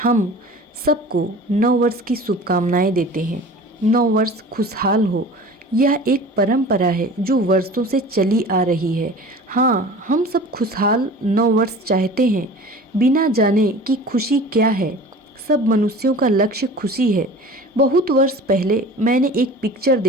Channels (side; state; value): both; normal; correlation 0.40